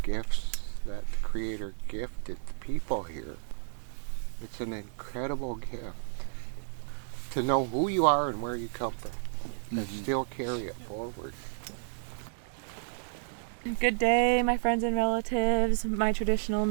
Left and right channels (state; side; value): silent; left; 57 dB below the other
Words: that the Creator gifted the people here. It's an incredible gift to know who you are and where you come from, and still carry it forward. Good day, my friends and relatives. My traditional